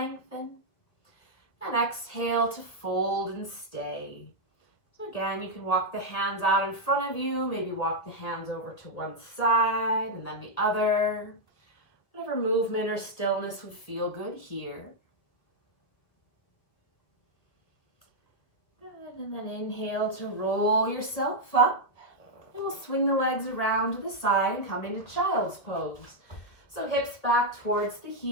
And exhale to fold and stay. So again, you can walk the hands out in front of you, maybe walk the hands over to one side and then the other. Whatever movement or stillness would feel good here. Good, and then inhale to roll yourself up. And we'll swing the legs around to the side and come into child's pose. So hips back towards the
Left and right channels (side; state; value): right; late; 1.7 ms